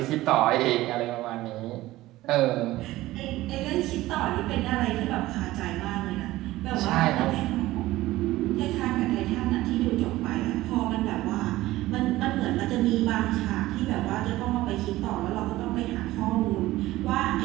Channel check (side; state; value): left; quieter; 17.0 dB